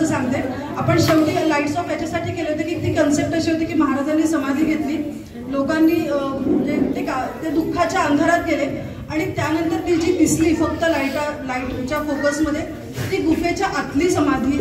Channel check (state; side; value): identical; both; correlation 1.00